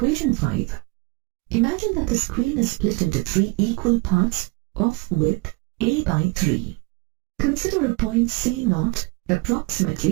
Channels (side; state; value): left; quieter; 26.5 dB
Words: 5. Imagine that the screen is split into 3 equal parts of width A by 3. Consider a point C0